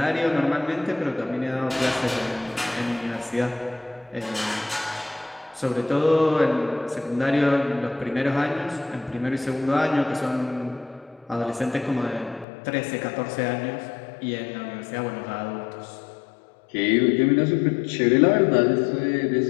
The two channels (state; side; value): drops out; right; at 12.5 s